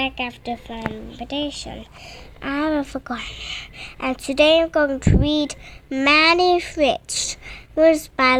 after fermentation. I haven't forgotten. And today I'm going to read Maddi Rich, words by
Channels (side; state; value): both; identical; correlation 1.00